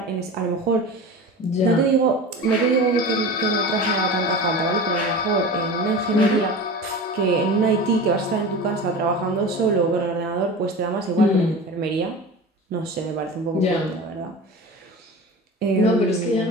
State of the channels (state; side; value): normal; both; correlation 0.32